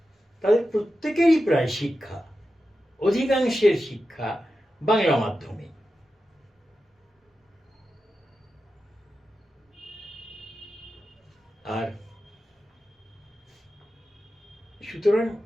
তাদের প্রত্যেকেরই প্রায় শিক্ষা, অধিকাংশের শিক্ষা বাংলা মাধ্যমে। আর সুতরাং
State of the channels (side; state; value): both; normal; correlation 0.91